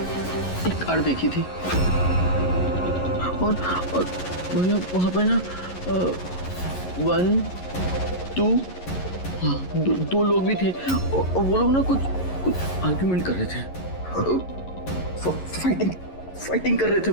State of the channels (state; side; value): late; right; 11 ms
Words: एक कार देखी थी। और भैया, वहां पे ना 1, 2, हाँ, दो लोग भी थे। और वो लोग ना कुछ आर्ग्यूमेंट कर रहे थे। फाइटिंग कर रहे थे